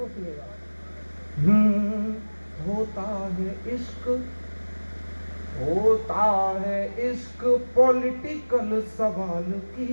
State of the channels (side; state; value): both; inverted; correlation -1.00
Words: हूँ, सुनिएगा। होता है इश्क, होता है इश्क पॉलिटिकल सवाल